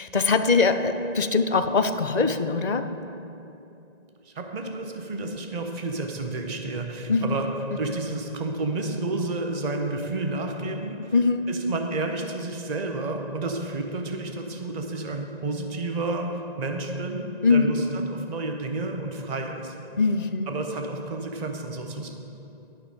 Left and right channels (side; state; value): left; late; 1.9 ms